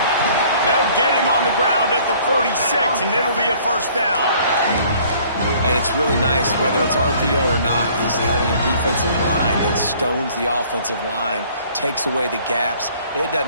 They'll get him on the ground at the 46, and it'll be a first down. And it's really nice, whether it's RPO or not, is having a defensive line that stones the offensive line, takes away the gaps. It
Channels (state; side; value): inverted; both; correlation -0.56